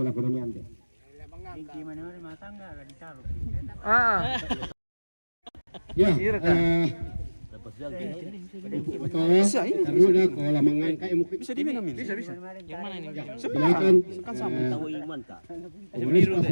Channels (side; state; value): both; inverted; correlation -1.00